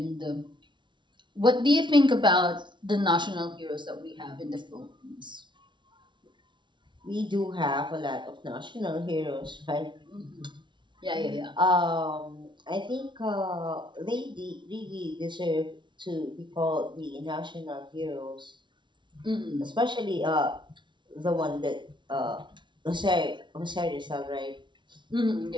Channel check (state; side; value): late; left; 0.23 ms